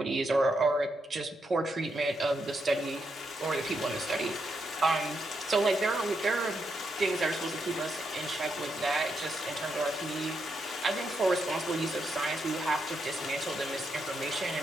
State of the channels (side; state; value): both; normal; correlation 0.81